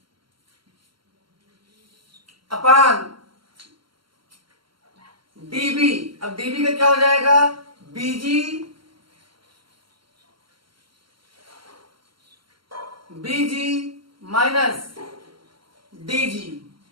upon DB। अब DB का क्या हो जाएगा? BG minus DG।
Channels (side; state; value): left; late; 0.73 ms